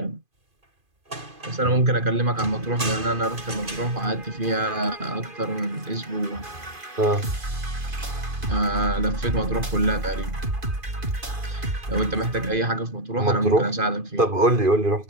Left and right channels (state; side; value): late; left; 2.5 ms